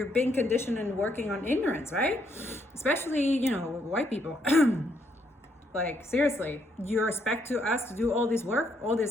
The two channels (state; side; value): normal; both; correlation 0.73